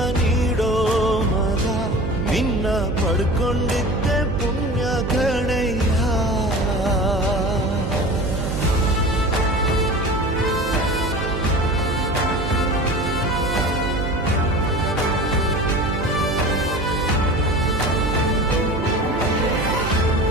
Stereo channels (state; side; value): noise; right; hum, 4 dB below the sound